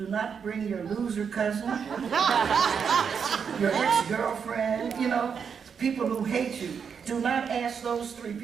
not bring your loser cousin, your ex-girlfriend, people who hate you. Do not ask those 3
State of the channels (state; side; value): quieter; left; 6.7 dB